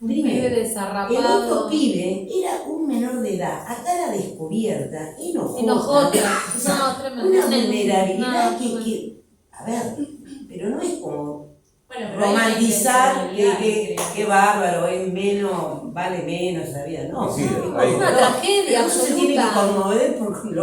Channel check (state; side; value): identical; both; correlation 1.00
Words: Un pibe El desarrapado. otro pibe era un menor de edad, acá la descubierta, Enojota. o sea, No, tremendo. una vulnerabilidad No, que, a ver, pero no es como Bueno, pero hay romantizar intencionalidad, que bárbaro, es menos, vale menos la vida, no. Sí, es hay- Una tragedia uno se tiene que absoluta. conmover por